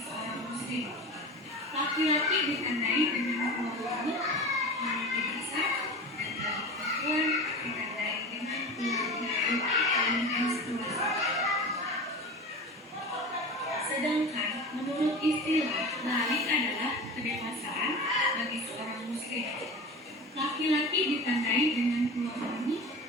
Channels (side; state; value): both; normal; correlation 0.31